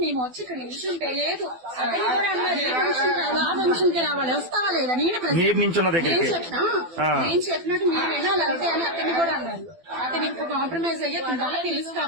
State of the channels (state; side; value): late; left; 12 ms